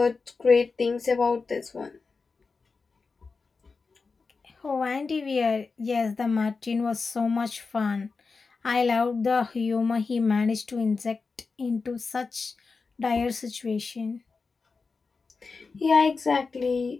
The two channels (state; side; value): quieter; right; 4.5 dB